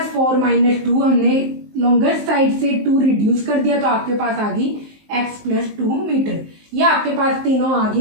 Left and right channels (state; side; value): late; left; 19 ms